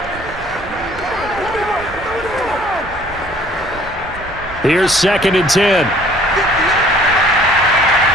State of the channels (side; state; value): right; noise; rumble, 19 dB below the sound